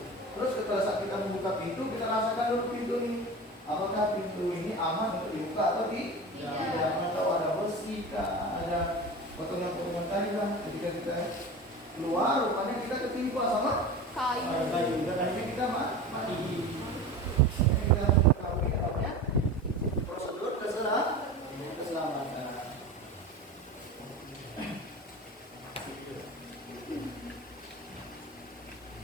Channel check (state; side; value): normal; both; correlation 0.31